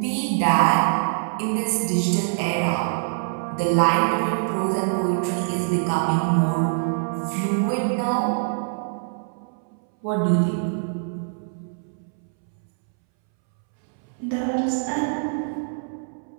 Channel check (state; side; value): silent; left; 63 dB below the other